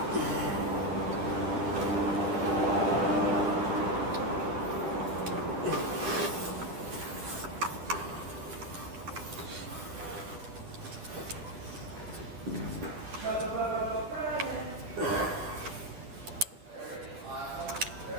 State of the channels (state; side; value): late; left; 9.8 ms